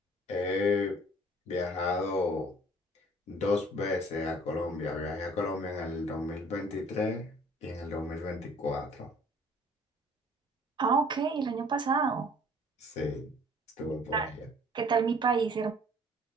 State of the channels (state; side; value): normal; both; correlation 0.54